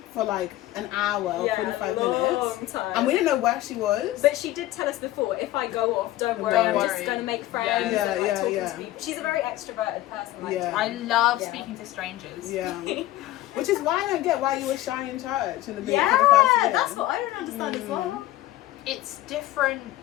for like an hour, 45 minutes, time. and we didn't know where she was. But she did tell us before, if I go off, don't worry, Don't I'm worry. just going to make friends Yeah. and like Yeah, talking yeah. to people. She's a very extroverted person. Like, Yeah. I love Yeah. speaking to strangers. Yeah, which is why I don't get why you were shy in church in the beginning yeah, for the first year. that's what I don't understand as well. It's different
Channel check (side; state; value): right; quieter; 15.8 dB